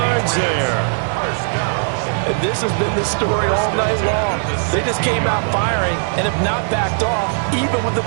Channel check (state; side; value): silent; left; 67 dB below the other